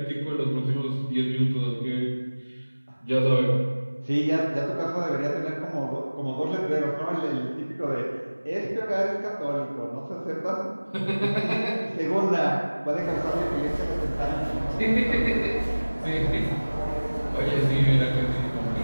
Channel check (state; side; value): inverted; both; correlation -1.00